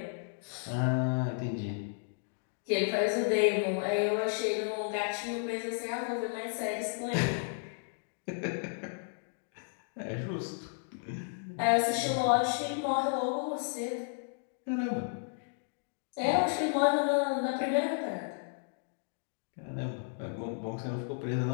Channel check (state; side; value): silent; right; digital silence